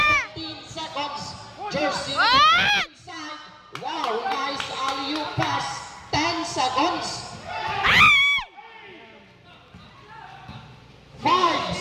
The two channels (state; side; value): identical; both; correlation 1.00